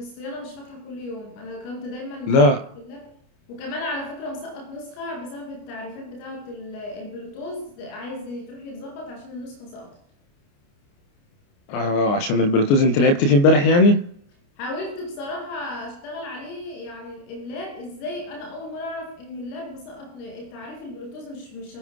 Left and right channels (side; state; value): right; late; 29 ms